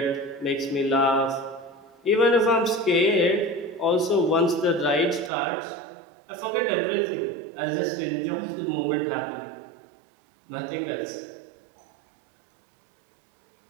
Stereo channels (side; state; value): left; drops out; at 5.3 s